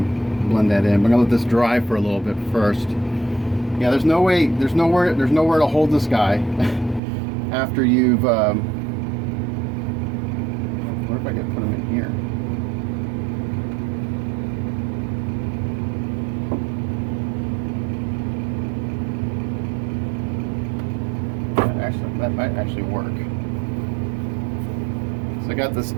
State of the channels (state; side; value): drops out; left; at 7.0 s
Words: blend that in. But I'm gonna let this dry for a little bit first. Yeah, there's nowhere to hold this guy after you've. What if I could put him in here? That might actually work. So I got this